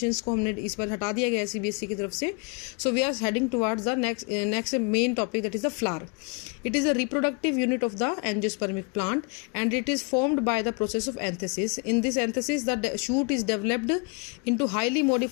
को हमने इस बार हटा दिया गया सीबीएसई की तरफ से. So we are heading towards the next main topic, that is the flower. It is a reproductive unit of the angiospermic plant and it is formed by the process of anthesis. In this anthesis, the shoot is developed into highly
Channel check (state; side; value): quieter; right; 33.3 dB